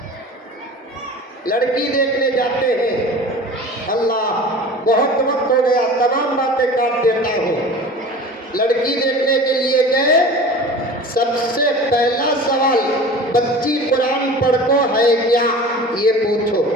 लड़की देखने जाते हैं, अल्लाह बहुत वक्त हो गया, तमाम बातें काट देता हूँ। लड़की देखने के लिए गए, सबसे पहला सवाल, बच्ची कुरान पढ़को है क्या, ये पूछो।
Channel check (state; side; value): normal; both; correlation 0.38